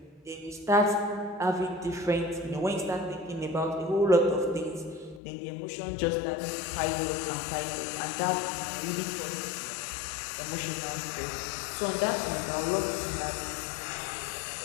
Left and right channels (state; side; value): drops out; right; at 5.2 s